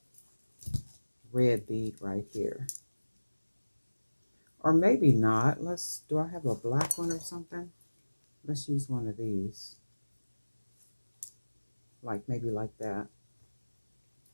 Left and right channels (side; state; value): both; inverted; correlation -1.00